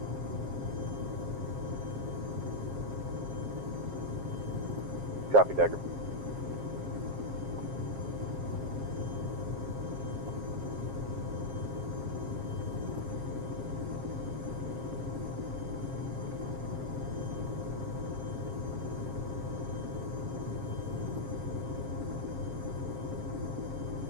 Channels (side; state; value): left; late; 7.4 ms